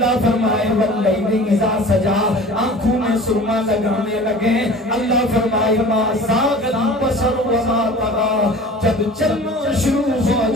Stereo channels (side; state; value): both; normal; correlation 0.42